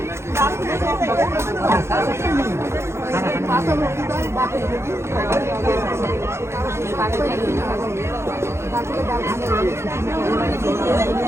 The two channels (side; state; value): left; late; 0.13 ms